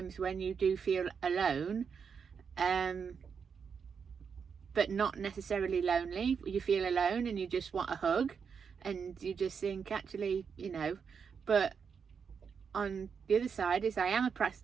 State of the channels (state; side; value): quieter; left; 6.4 dB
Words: when you do feel alone, but not necessarily lonely. You feel alone and you just want a hug, and you just think, actually, you know. But on the other side is I am a